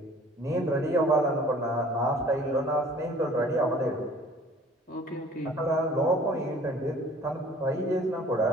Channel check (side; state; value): both; normal; correlation 0.51